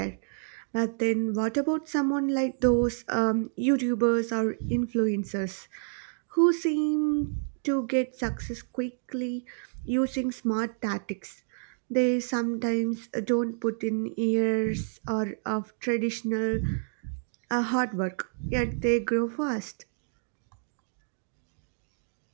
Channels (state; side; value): silent; left; digital silence